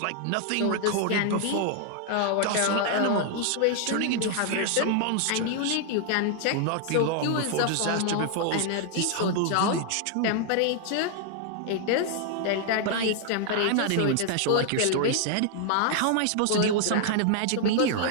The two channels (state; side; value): different; both; correlation 0.00